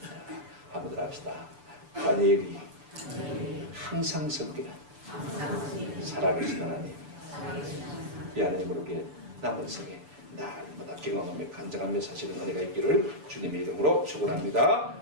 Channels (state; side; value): late; left; 6.8 ms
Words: 한번 합시다. 다니엘이 항상 섬기는 살아계신 하나님, 이 하나님을 우리의 남은 생에 날마다 경험하며 간증하며 사시는 은혜가 있기를 주님의 이름으로 축원합니다.